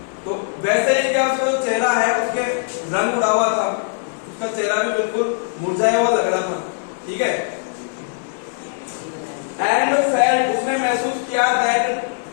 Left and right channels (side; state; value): right; silent; 57 dB below the other